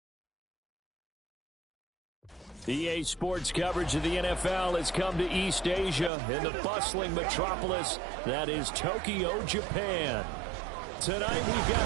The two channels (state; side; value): drops out; left; at 6.1 s